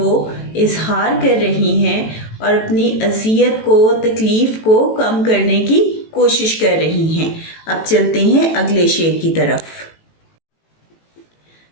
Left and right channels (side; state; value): right; late; 18 ms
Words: इजहार कर रही हैं और अपनी अज़ियत को, तकलीफ़ को कम करने की कोशिश कर रही हैं। अब चलते हैं अगले शेर की तरफ।